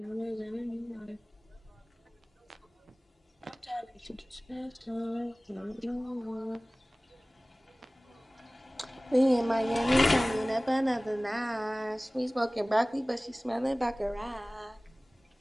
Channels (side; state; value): both; normal; correlation 0.98